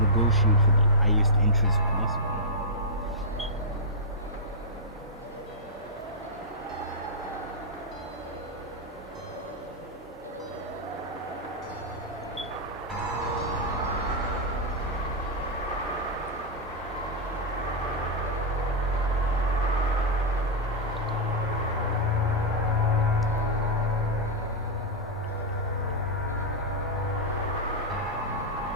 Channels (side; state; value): both; normal; correlation -0.07